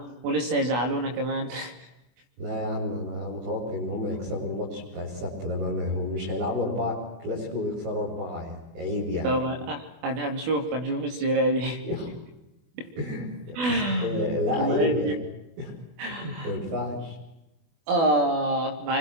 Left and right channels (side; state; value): left; late; 24 ms